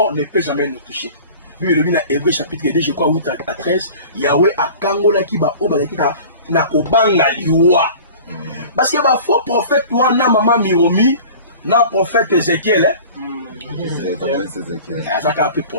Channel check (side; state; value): both; inverted; correlation -0.42